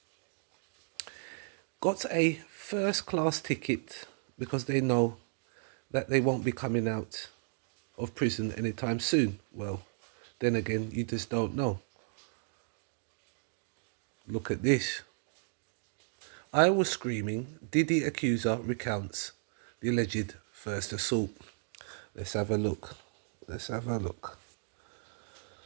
got a first class ticket because they know that they won't be coming out of prison anytime soon. Well, then again, you just don't know. Look at this. I was screaming, Diddy accuser recounts the alleged first assault. Let's have a look. Let's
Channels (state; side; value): silent; left; 55 dB below the other